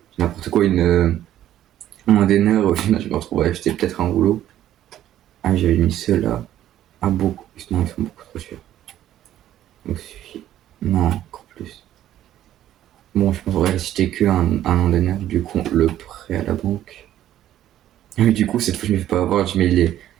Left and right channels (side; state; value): left; quieter; 12.3 dB